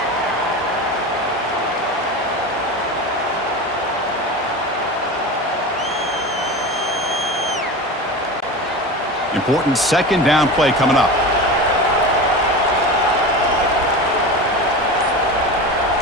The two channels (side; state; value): both; normal; correlation 0.28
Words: Important 2nd down play coming up.